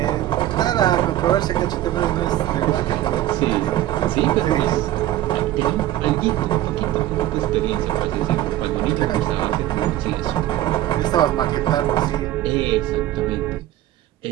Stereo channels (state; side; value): quieter; left; 13.9 dB